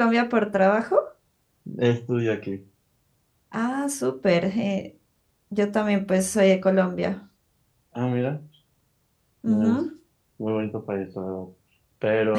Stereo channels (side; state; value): both; identical; correlation 1.00